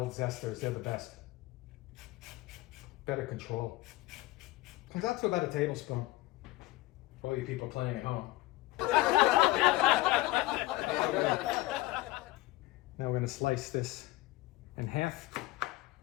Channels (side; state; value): right; quieter; 19.3 dB